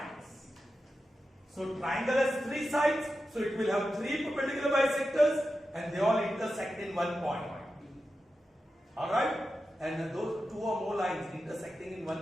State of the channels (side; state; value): both; normal; correlation 0.91